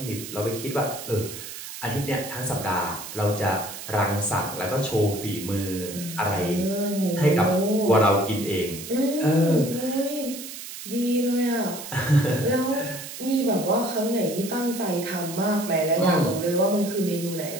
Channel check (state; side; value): noise; right; hiss, 11 dB below the sound